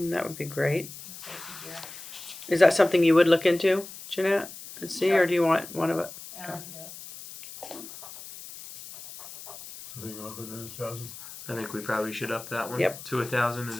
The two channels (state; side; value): noise; left; hiss, 14 dB below the sound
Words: would be great. Safety gear. Is that something you would look into, Jeanette, and see, Sure. or do you want one of it? Yeah, I can do it. So you want to put it in 1,000? I think we probably should up that one Yep. to 1,000.